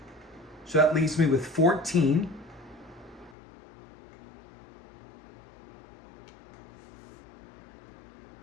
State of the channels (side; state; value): right; drops out; at 3.4 s